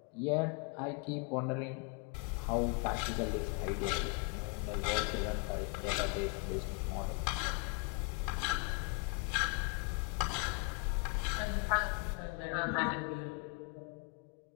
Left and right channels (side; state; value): right; quieter; 34.0 dB